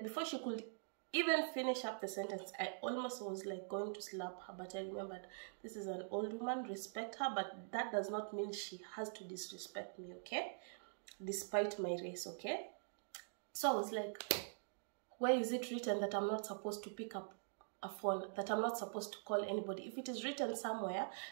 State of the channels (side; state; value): left; silent; digital silence